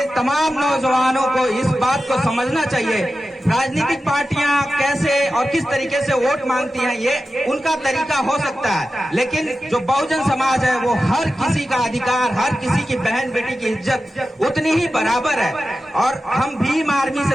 तमाम नौजवानों को इस बात को समझना चाहिए। राजनीतिक पार्टियां कैसे और किस तरीके से वोट मांगती हैं, ये उनका तरीका हो सकता है, लेकिन जो बहुजन समाज है वो हर किसी का अधिकार, हर किसी की बहन बेटी की इज्जत उतनी ही बराबर है। और हम भीम आर्मी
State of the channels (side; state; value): both; normal; correlation 0.92